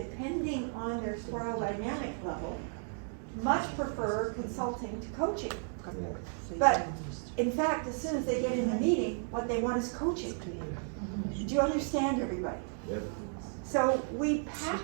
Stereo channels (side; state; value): left; silent; 55 dB below the other